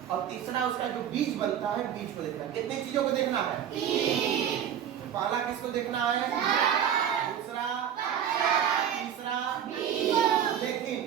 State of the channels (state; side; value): quieter; left; 9.4 dB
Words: और तीसरा उसका जो बीज बनता है बीज को देखना है। कितनी चीजों को देखना है? पहला किसको देखना है, दूसरा, तीसरा बीज। लेकिन